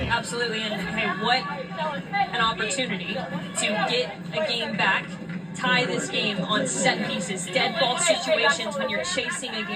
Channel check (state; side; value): identical; both; correlation 1.00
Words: Absolutely, and hey, what an opportunity to get a game back, tie this game on set pieces. Dead ball situations when you're chasing a